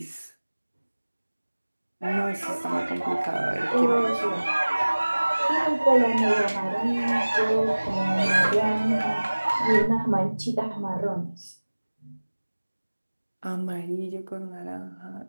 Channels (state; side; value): inverted; both; correlation -1.00